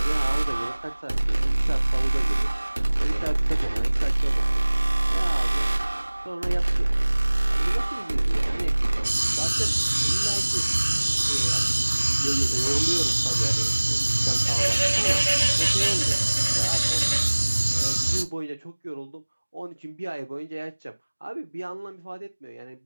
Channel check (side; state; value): both; inverted; correlation -1.00